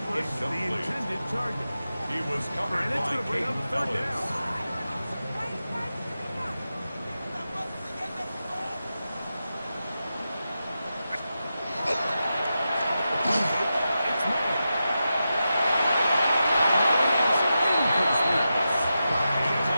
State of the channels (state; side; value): inverted; both; correlation -0.90